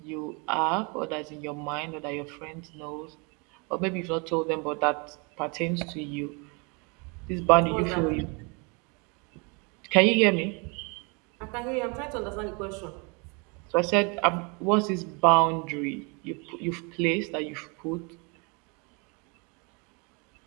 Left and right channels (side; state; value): left; quieter; 31.9 dB